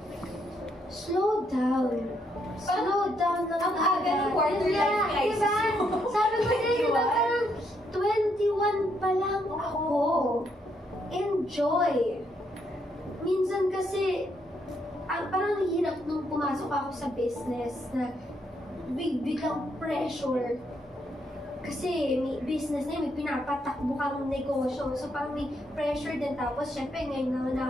slow down. Slow down lang. Ang aga ng quarter life crisis. Diba? Sabi ko din, diba, parang 21 pa lang ako. Enjoy. Minsan kasi, parang hirap nung pumasok ako sa business na biglang pressure. Kasi may business na yun, may pinapatakbo kang negosyo. So parang may pressure din. Tapos syempre ngayon naman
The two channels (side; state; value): both; normal; correlation 0.75